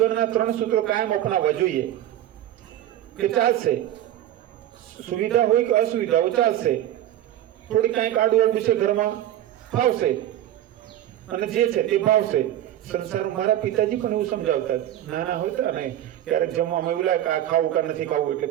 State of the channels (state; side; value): quieter; left; 12.3 dB